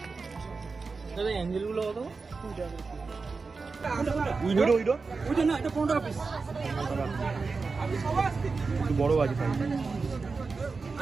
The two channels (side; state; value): left; quieter; 4.4 dB